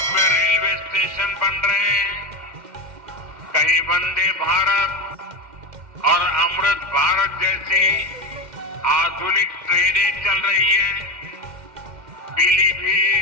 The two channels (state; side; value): late; left; 2.1 ms